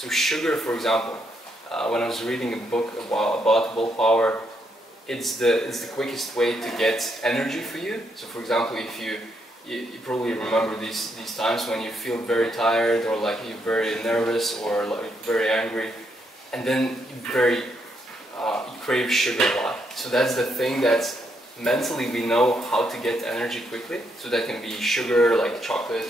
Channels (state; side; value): normal; both; correlation 0.77